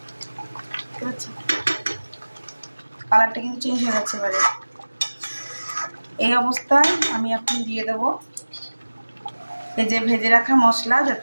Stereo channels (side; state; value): both; inverted; correlation -1.00